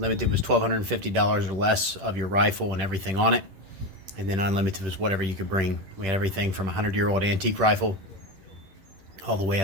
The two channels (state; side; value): late; left; 10 ms